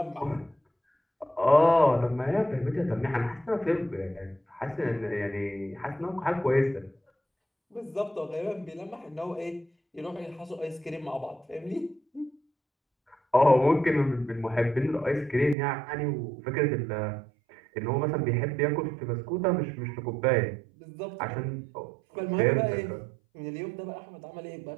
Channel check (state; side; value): drops out; left; at 15.6 s